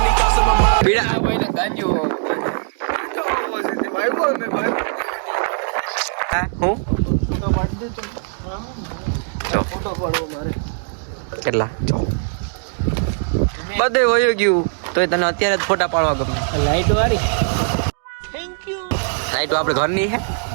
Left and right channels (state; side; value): silent; left; digital silence